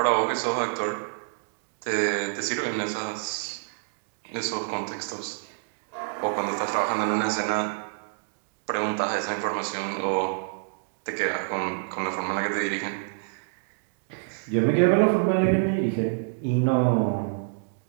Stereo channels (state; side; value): silent; left; digital silence